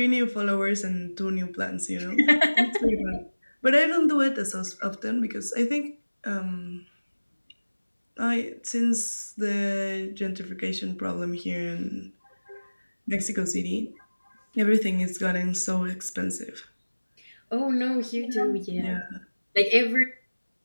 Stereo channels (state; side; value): inverted; both; correlation -1.00